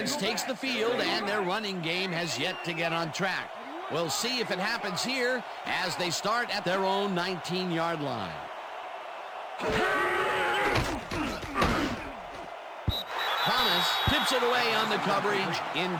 takes the field, and their running game has yet to get on track. We'll see if it happens here as they start at their own 19-yard line. Thomas tips it away on the coverage,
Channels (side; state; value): both; identical; correlation 1.00